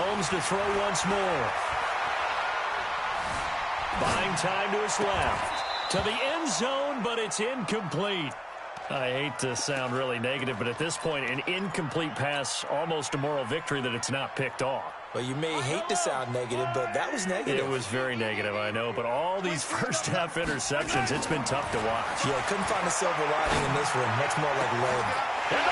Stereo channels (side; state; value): both; identical; correlation 1.00